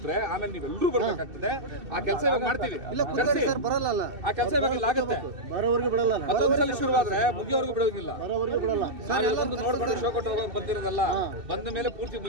ಆಮೇಲೆ ನೀವೆಲ್ಲರೂ ಬರ್ಬೇಕಾಗ್ತದೆ. ಆ ಕೆಲಸ ಇವಾಗ ಮಾಡ್ತೀವಿ. ಸರ್ ಬರಲ್ಲ. ಆ ಕೆಲಸ ಇವಾಗ ಆಗುತ್ತೆ. ಬರೋವರೆಗೂ ಬಿಡಲ್ಲ. ಮತ್ತೊಂದ್ಸಲ ಶುರುವಾದ್ರೆ ಮುಗಿಯೋವರೆಗೂ ಬಿಡೋದಿಲ್ಲ. ಬರೋವರೆಗೂ ಬಿಡಲ್ಲ. ಒಂದು ನೋಡ್ಕೊಂಡು ಶೋ ಕೊಟ್ಟು ಹೋಗೋಕೆ ಬಂದಿರೋದಲ್ಲ, ಬಂದ ಮೇಲೆ ಪೂರ್ತಿ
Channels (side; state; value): left; late; 2.7 ms